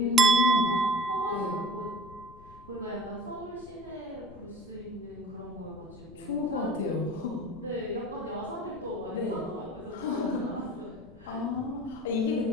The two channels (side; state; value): left; noise; rumble, 20 dB below the sound